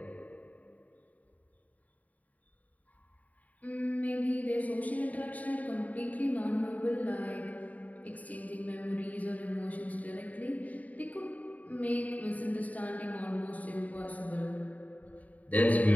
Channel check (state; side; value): late; right; 0.073 ms